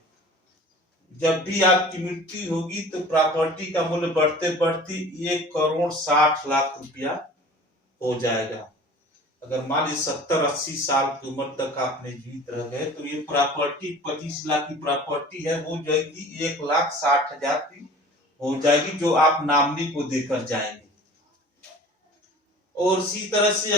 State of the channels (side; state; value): both; normal; correlation 0.43